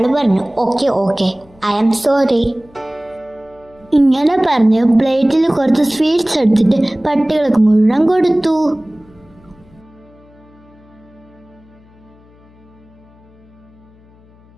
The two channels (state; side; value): noise; left; hum, 28 dB below the sound